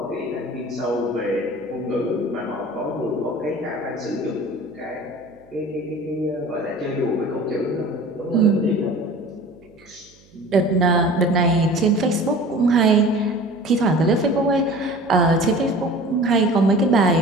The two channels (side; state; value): right; noise; hum, 29 dB below the sound